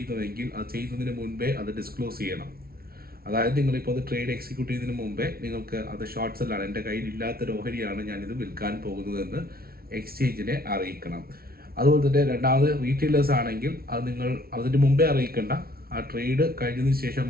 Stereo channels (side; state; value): left; late; 0.44 ms